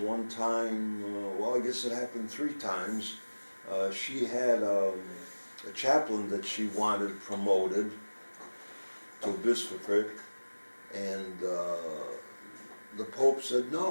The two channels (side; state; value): both; inverted; correlation -1.00